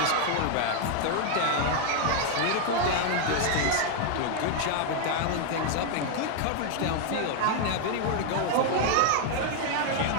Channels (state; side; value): different; both; correlation 0.00